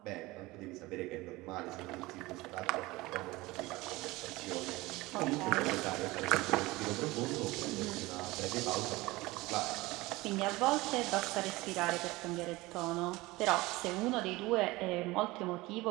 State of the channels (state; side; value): quieter; left; 20.7 dB